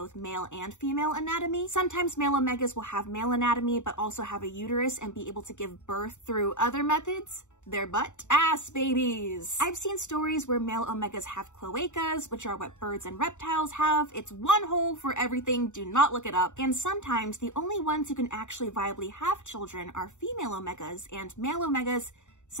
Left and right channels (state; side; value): late; right; 0.84 ms